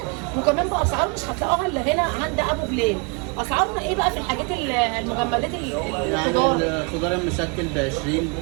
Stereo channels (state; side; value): quieter; left; 34.2 dB